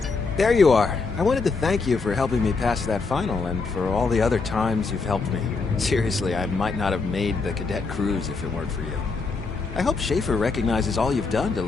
There you are. I wanted to thank you for helping me pass that final and for all the other times you've helped me. Seriously, I might not have made the cadet cruise if it weren't for you. I hope Schaefer recognizes all you've done to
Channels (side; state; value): right; quieter; 4.3 dB